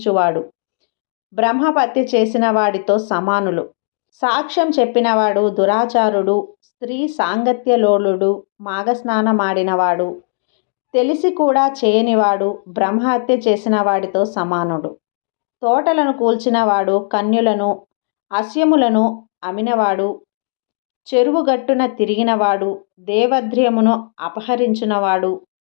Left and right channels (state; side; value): silent; right; digital silence